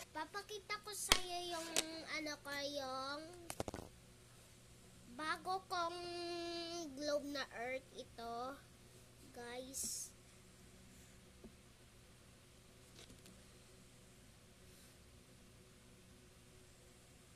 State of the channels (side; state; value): both; identical; correlation 1.00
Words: Papakita ko sa iyo yung yung bago kong globe na earth ito, guys.